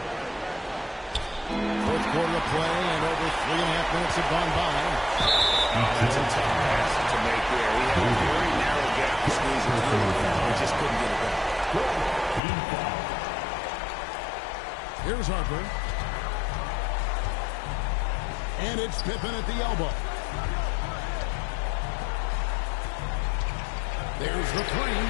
Fourth quarter of play, and over 3.5 minutes have gone by. That's a tough pass to make there. He had a very narrow gap to squeeze it through and just couldn't get it back. Team foul. Here's Harper. And it's Pippen at the elbow. There's the three.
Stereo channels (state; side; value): drops out; right; at 12.4 s